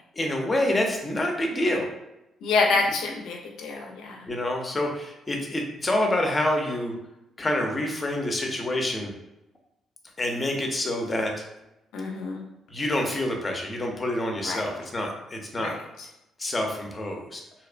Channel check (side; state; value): both; normal; correlation 0.80